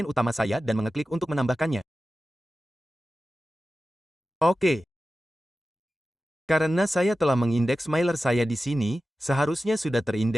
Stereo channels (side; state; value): both; normal; correlation 0.94